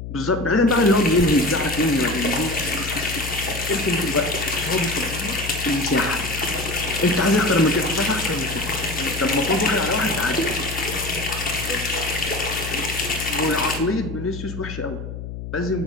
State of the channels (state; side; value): noise; left; hum, 9 dB below the sound